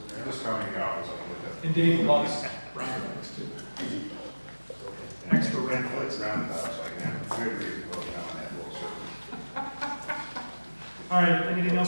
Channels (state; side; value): inverted; both; correlation -1.00